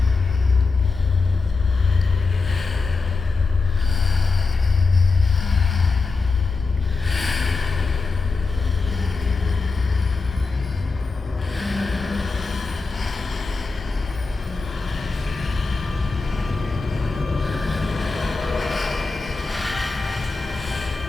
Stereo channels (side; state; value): right; quieter; 4.2 dB